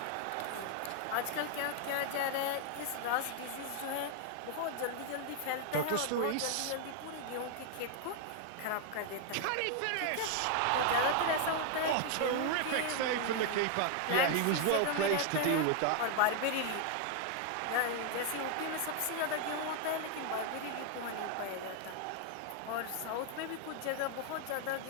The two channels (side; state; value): both; different; correlation 0.00